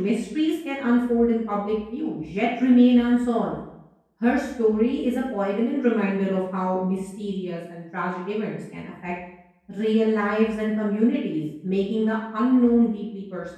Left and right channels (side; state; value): both; identical; correlation 1.00